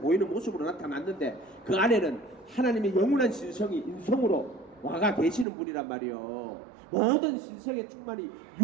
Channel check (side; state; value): left; drops out; at 5.5 s